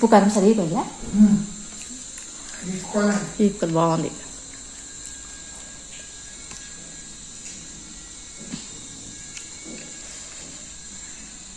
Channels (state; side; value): identical; both; correlation 1.00